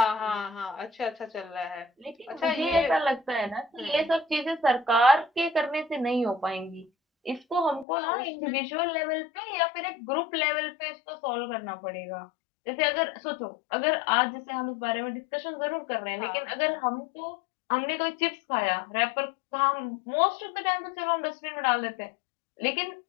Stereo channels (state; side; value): drops out; right; at 7.9 s